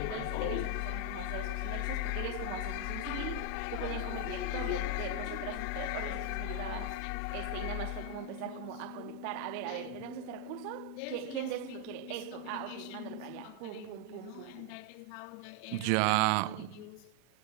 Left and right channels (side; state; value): both; different; correlation 0.01